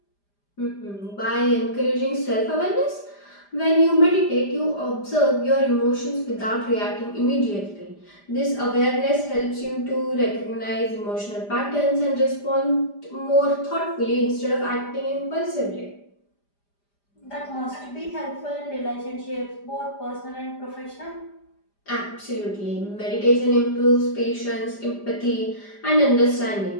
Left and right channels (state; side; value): late; right; 5.0 ms